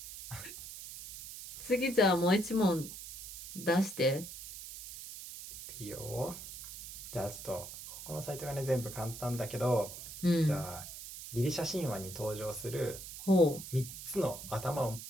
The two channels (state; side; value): noise; right; hiss, 11 dB below the sound